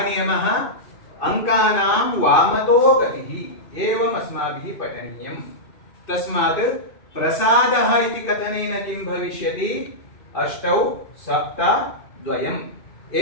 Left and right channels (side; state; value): right; late; 2.6 ms